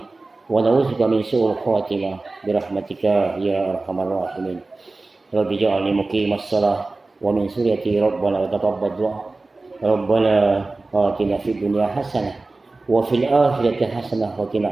wa na'udzubika min su'il khatimah bi rahmatika ya arhamar rahimin. Rabbi ja'alni muqimas shalah wa min suriyati rabbana wa taqabbal du'a. Rabbana atina fid dunya hasanah wa fil akhirati hasanah wa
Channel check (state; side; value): quieter; left; 3.3 dB